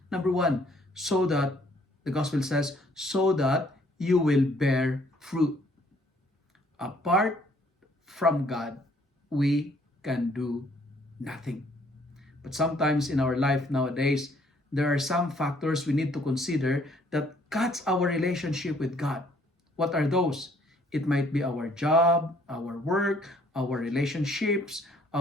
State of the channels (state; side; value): normal; both; correlation 0.63